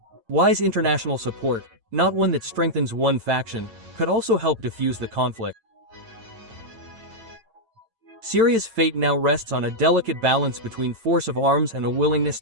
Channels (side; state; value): left; late; 8.9 ms